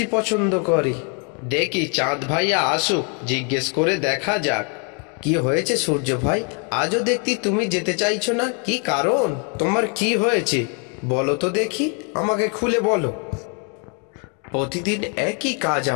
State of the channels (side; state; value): right; quieter; 37.8 dB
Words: পছন্দ করে। দেখি চাঁদ ভাইয়া আসুক, জিজ্ঞেস করে দেখা যাক। কি হয়েছে সূর্য ভাই, আজও দেখতি তুমি যেতে চাইছো না? কি কারণ? তোমার কি হয়েছে বলো তো দেখি, আমাকে খুলে বলো। প্রতিদিন একই কাজ